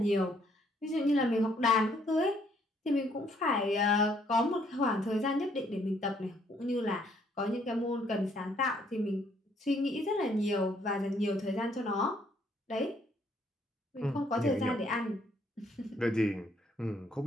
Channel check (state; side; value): normal; both; correlation 0.67